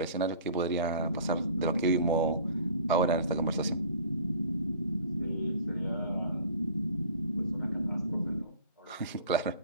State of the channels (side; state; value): both; inverted; correlation -0.46